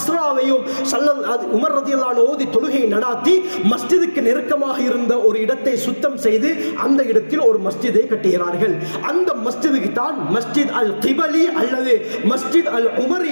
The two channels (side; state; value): both; inverted; correlation -1.00